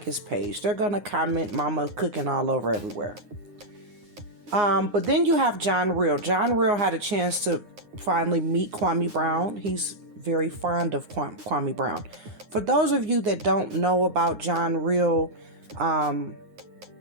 his page. They're going to comment mama cooking all over everywhere. But then you have John Real. John Real had a chance to finally meet Kwame Brown. He's very fond of Kwame Brown. For those of you that don't know about John Real,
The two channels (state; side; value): late; left; 9.6 ms